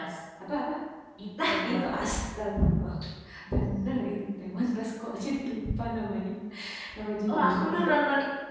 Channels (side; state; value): both; identical; correlation 1.00